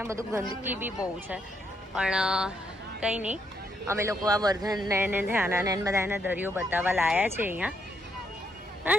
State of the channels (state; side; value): normal; both; correlation 0.76